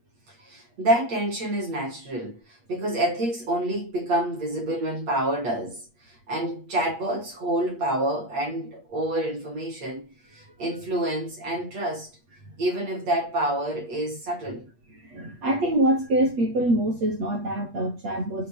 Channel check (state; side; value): late; left; 8.4 ms